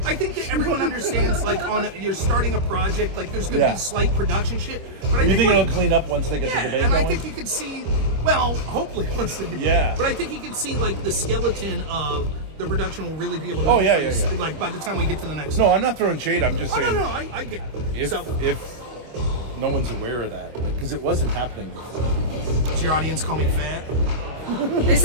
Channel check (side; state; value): left; late; 25 ms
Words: I think that everyone understands. Like, you're starting a project. Like, there's going to be slight production shit. But you think it'll clean up once they get the debate and going? I think you can see. Well, hopefully once they get. Yeah. But I think you can see like the skeleton of the production will really be able to. Oh yeah. Like by the time we get to the next. No, I'm not throwing shade. I'm just saying. No, I get. If no one's aware of that, because it wasn't happening before. Does your audience call me fat? They